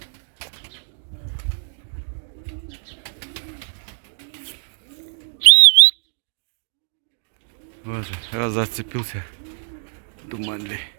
Вот же, раз зацепился. Думанли.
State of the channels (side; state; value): left; silent; digital silence